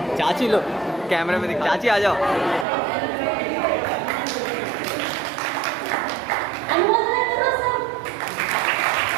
चाची लो, कैमरे में दिख। चाची आ जाओ। अनुमोदन करो सब।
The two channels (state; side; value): drops out; left; at 2.7 s